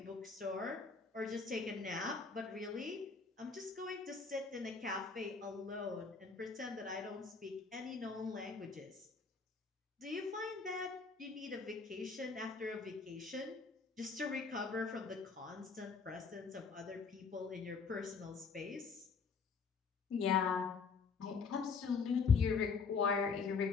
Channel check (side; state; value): right; quieter; 4.9 dB